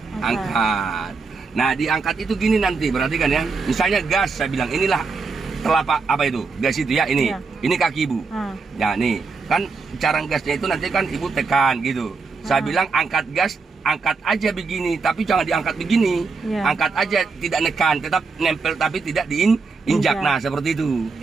Nah diangkat itu gini nanti, perhatikan ya. Misalnya gas, saya bilang inilah telapak apa itu, gas itu ya, ini kaki ibu. Nah nih kan cara gasnya itu nanti kan ibu tekan gitu. Saya bilang angkat gas, angkat aja begini, tapi jangan diangkat begini. Angkat aja, tidak nekan, tetap nempel tapi tidak diinjak. Nah seperti itu.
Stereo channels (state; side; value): quieter; left; 4.5 dB